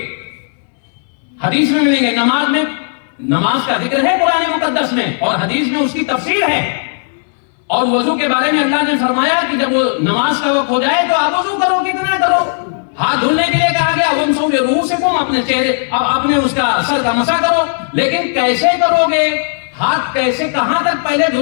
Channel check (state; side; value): silent; right; digital silence